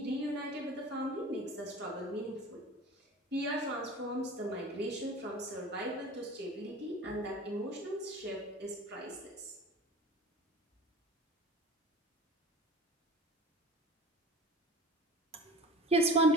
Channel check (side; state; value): both; normal; correlation 0.39